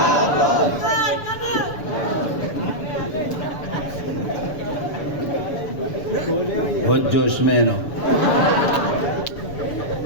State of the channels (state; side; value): late; right; 7.0 ms